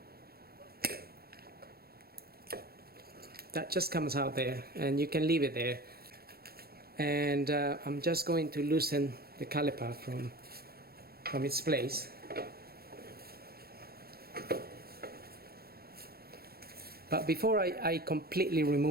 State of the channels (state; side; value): late; left; 0.45 ms